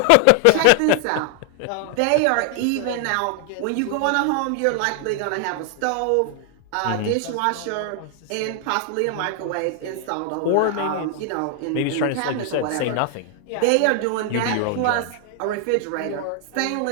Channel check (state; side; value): different; both; correlation 0.00